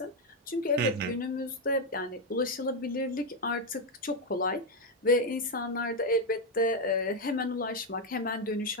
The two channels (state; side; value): normal; both; correlation 0.04